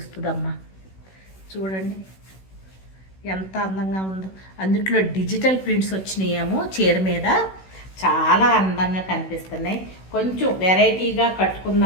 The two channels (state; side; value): late; right; 16 ms